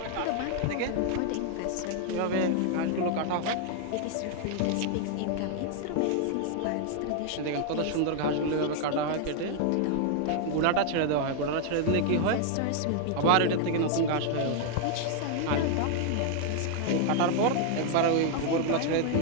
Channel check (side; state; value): both; different; correlation 0.00